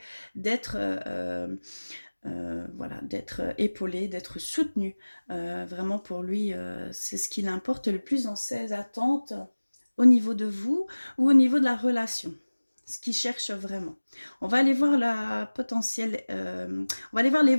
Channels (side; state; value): both; inverted; correlation -1.00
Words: d'être, voilà, d'être épaulé, d'être soutenu. Vraiment pour lui, c'est ce qui l'importe le plus dans ses attentes au niveau de vous ou au niveau de la relation. Ce qu'il cherche vraiment. On va aller voir la potentielle, on va aller voir